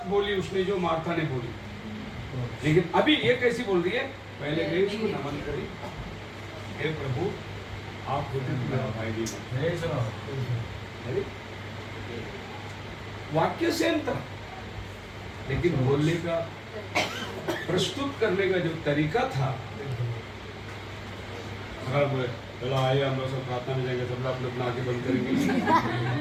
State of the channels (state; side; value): identical; both; correlation 1.00